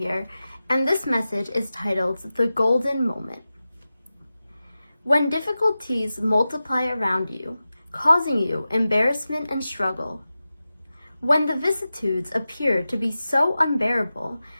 and this message is titled The Golden Moment. When difficulties multiply around you, causing you embarrassment and struggle, when the vicissitudes appear to be so unbearable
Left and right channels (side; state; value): both; inverted; correlation -0.94